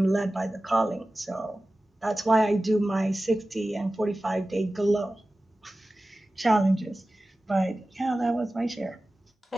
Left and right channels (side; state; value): both; normal; correlation 0.96